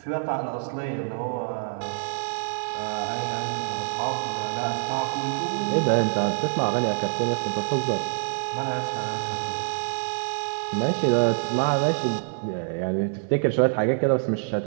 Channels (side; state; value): left; silent; 61 dB below the other